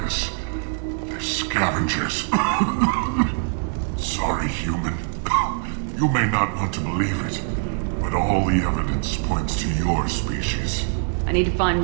this. They're scavengers. Sorry, human. You may not want to believe it, but all the evidence points to your species. I need to find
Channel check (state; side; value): silent; left; 57 dB below the other